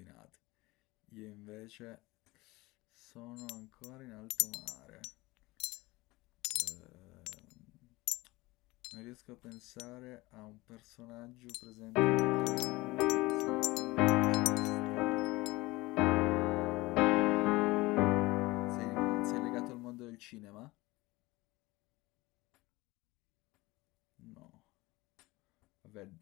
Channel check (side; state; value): right; quieter; 21.1 dB